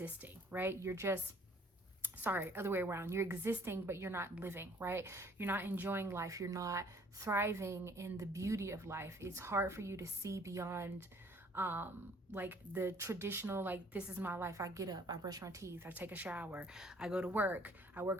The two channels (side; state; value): both; normal; correlation 0.58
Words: right? Other way around. You're existing, but you're not living, right? You're not enjoying life. You're not thriving in the beauty of life. It's hard for you to see beyond like the traditional, like, this is my life. I get up, I brush my teeth, I take a shower, I go to work, I